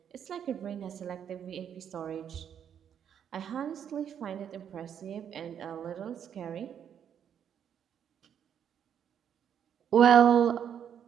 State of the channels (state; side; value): quieter; left; 8.7 dB